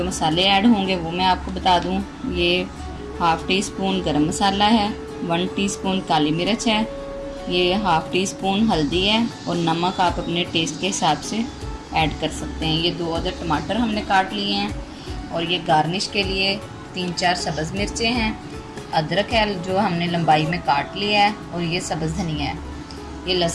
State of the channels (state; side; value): identical; both; correlation 1.00